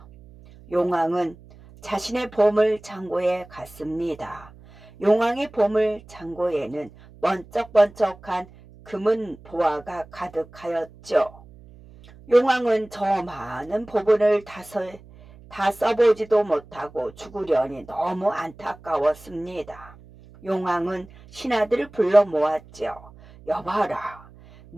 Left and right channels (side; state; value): right; noise; hum, 22 dB below the sound